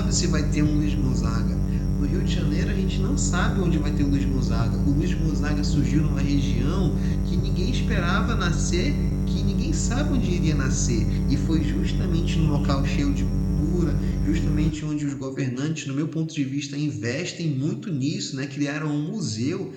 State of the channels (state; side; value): identical; both; correlation 1.00